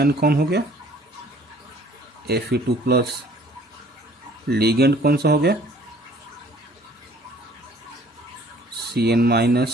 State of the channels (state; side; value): normal; both; correlation 0.56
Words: कौन हो गया, Fe2+। लीगेंड कौन सा हो गया,